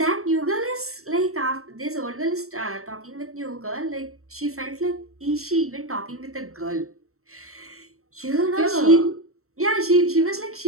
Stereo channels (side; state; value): left; late; 0.64 ms